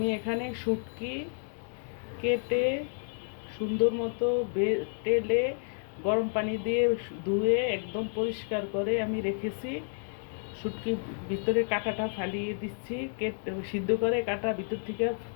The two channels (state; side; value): silent; right; digital silence